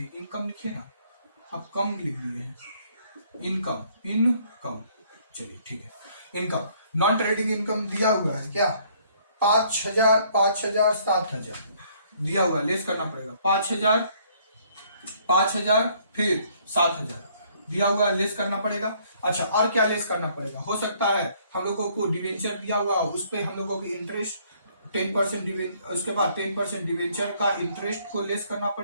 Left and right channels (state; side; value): inverted; both; correlation -0.64